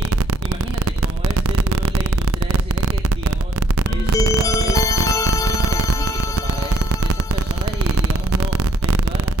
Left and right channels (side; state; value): both; normal; correlation 0.68